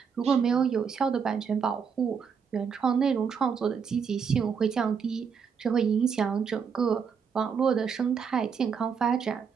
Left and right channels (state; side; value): quieter; left; 6.5 dB